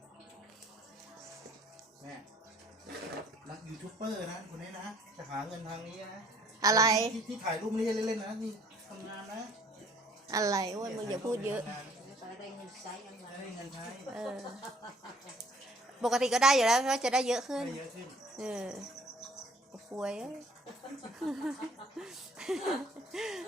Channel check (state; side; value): normal; both; correlation 0.57